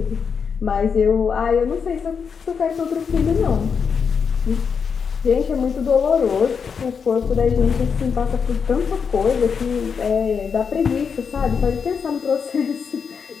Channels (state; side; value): quieter; right; 6.2 dB